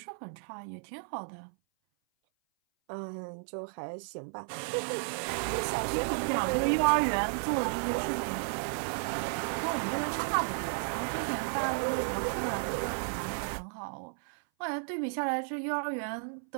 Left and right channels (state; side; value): silent; left; 56 dB below the other